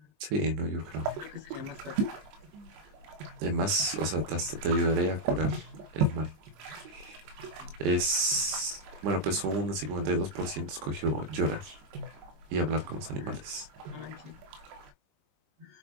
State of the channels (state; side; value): late; left; 20 ms